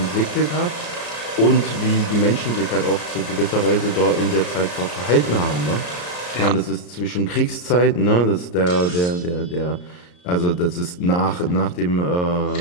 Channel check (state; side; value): late; right; 34 ms